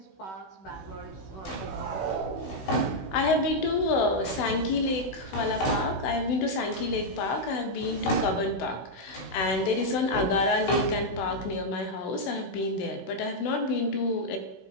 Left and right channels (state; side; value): late; right; 16 ms